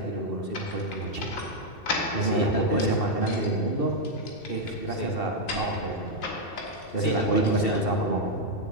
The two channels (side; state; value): right; late; 2.7 ms